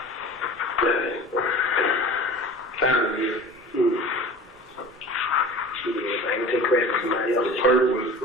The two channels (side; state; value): both; normal; correlation 0.39